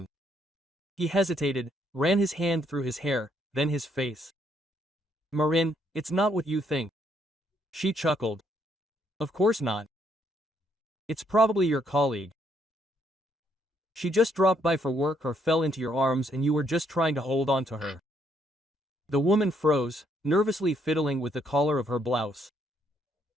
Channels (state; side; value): normal; both; correlation 0.72